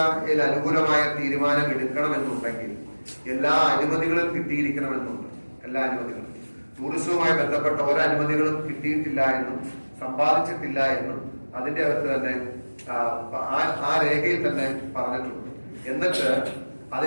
അനുകൂലമായ തീരുമാനം എടുക്കണമെന്നുണ്ടെങ്കിൽ എല്ലാ അനുമതികളും കിട്ടിയിരിക്കണമെന്നുണ്ട്. എല്ലാ അനുമതികളും ടൂറിസവുമായി ബന്ധപ്പെട്ട ഒരനുമതികളും കിട്ടിയിട്ടില്ല എന്നും സമ്പാദിച്ചിട്ടില്ല എന്നും അതിന്റെ അകത്ത് തന്നെ ആ രേഖയിൽ തന്നെ പറഞ്ഞിട്ടുണ്ട്. എന്നിട്ട്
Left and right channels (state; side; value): inverted; both; correlation -1.00